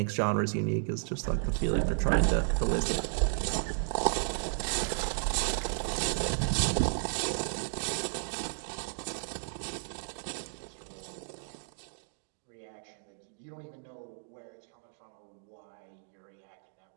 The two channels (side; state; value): left; silent; digital silence